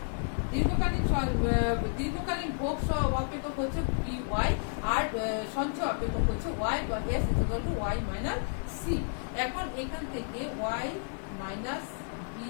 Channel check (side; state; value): right; silent; 57 dB below the other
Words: দীর্ঘকালীন ভোগ অপেক্ষক হচ্ছে dy, আর সঞ্চয় অপেক্ষক হচ্ছে y বা s is equal to y minus c। এখন এখান থেকে y minus